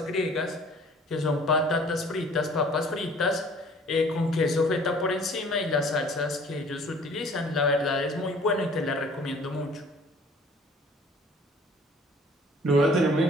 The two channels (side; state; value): both; normal; correlation 0.52